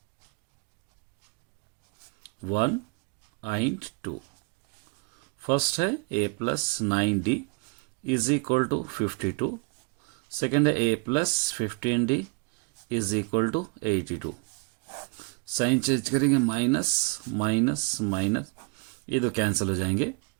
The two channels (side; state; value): left; quieter; 31.6 dB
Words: 1 and 2। फर्स्ट है A plus 9D is equal to 52, second है A plus 15D is equal to 82। Sign change करेंगे, माइनस माइनस माइनस, ये दो कैंसिल हो जाएंगे।